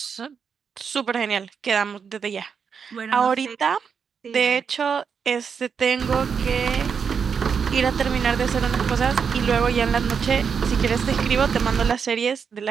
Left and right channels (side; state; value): left; quieter; 6.4 dB